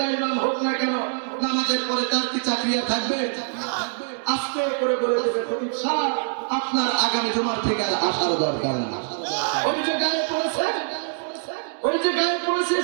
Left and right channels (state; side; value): silent; left; digital silence